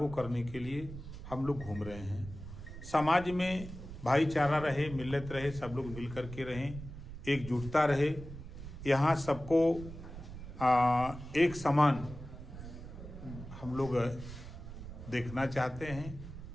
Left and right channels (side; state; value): right; noise; rumble, 12 dB below the sound